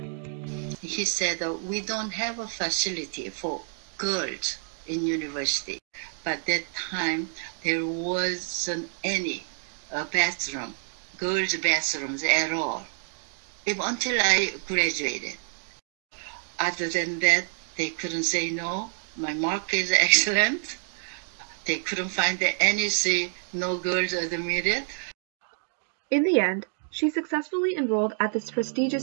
He said, we don't have a facility for girls in university. But that time, there wasn't any bathroom, girls' bathrooms at all, even until I graduated. Other than that, they couldn't say no. My mark is excellent. They couldn't find anything, no girls admitted. In the end, she successfully enrolled at this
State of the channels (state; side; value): silent; left; digital silence